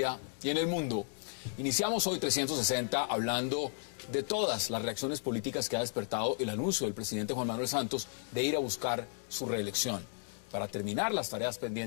y en el mundo. Iniciamos hoy 360 hablando de todas las reacciones políticas que ha despertado el anuncio del presidente Juan Manuel Santos de ir a buscar su reelección para terminar las tareas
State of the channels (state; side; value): silent; right; 55 dB below the other